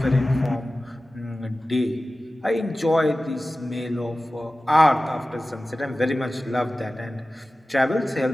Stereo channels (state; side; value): normal; both; correlation 0.96